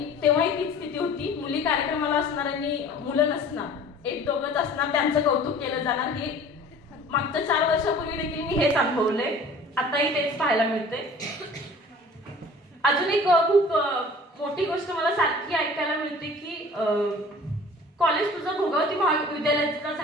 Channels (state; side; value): normal; both; correlation 0.46